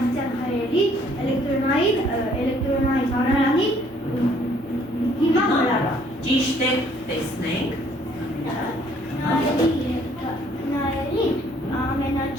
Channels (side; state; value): left; noise; hum, 27 dB below the sound